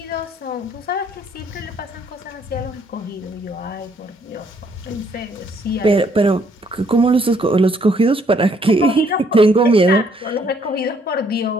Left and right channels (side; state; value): both; normal; correlation 0.67